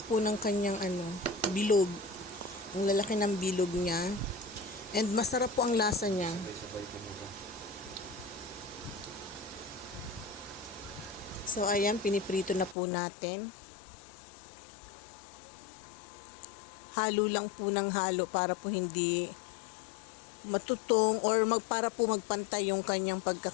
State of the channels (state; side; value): drops out; right; at 12.8 s